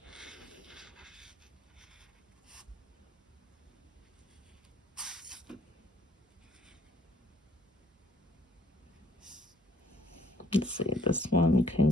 let's see, this one can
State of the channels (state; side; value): normal; both; correlation 0.62